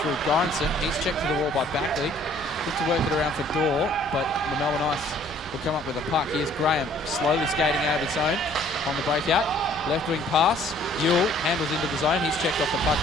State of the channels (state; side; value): normal; both; correlation 0.58